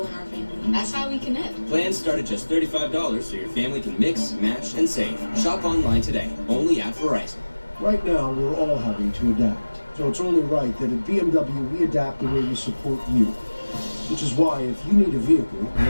in our family. That's how we connect. Plans start at just $35 so your family can mix, match, and save. Shop online today, only at Verizon. Right now, we're all having to adapt. So it's only right that at BMW, we adapt the way we support you. Which is why, if you need a vehicle,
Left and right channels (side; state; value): both; inverted; correlation -1.00